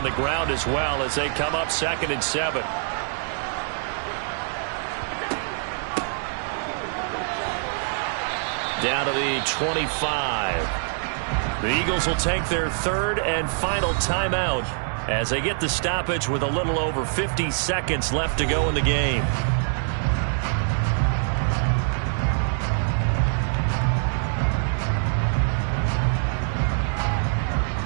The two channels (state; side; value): silent; left; digital silence